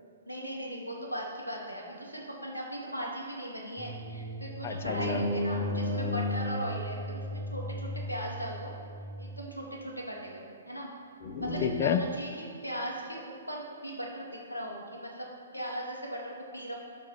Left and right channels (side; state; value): both; inverted; correlation -0.33